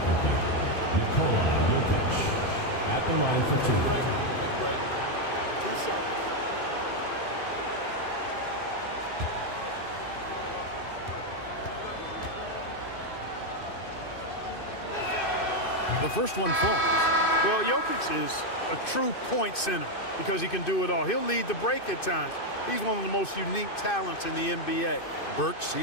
Jokic at the line for 2. Take a break. 2 shots. The first one falls. Well, Jokic is a true point center because he can do it all. He'll lead the break at times. He's one of the most unique talents in the NBA. Burks,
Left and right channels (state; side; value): late; right; 2.5 ms